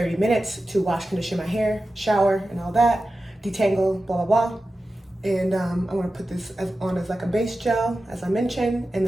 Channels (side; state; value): both; normal; correlation 0.93